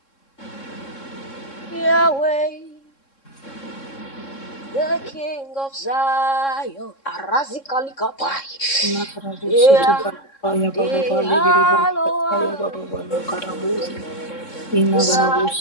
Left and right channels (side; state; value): right; late; 3.7 ms